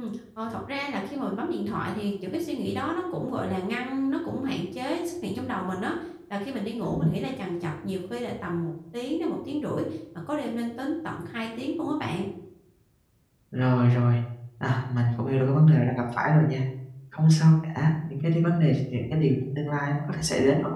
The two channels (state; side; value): identical; both; correlation 1.00